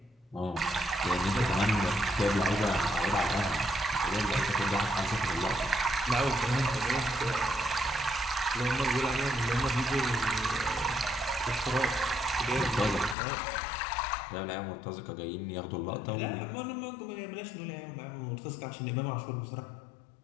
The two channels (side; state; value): right; drops out; at 13.2 s